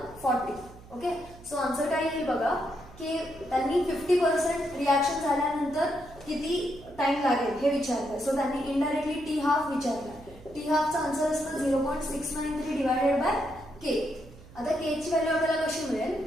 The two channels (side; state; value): right; noise; hum, 20 dB below the sound